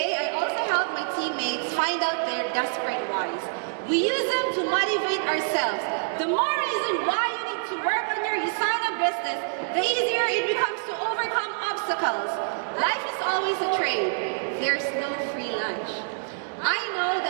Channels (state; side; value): silent; left; digital silence